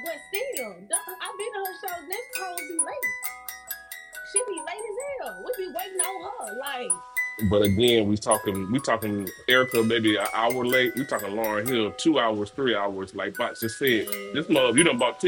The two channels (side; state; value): both; identical; correlation 1.00